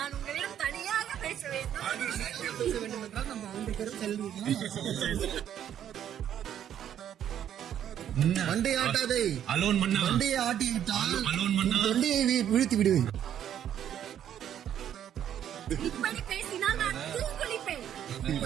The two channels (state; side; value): quieter; left; 10.1 dB